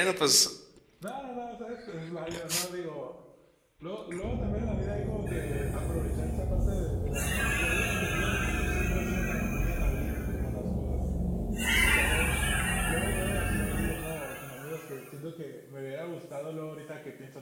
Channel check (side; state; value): both; identical; correlation 1.00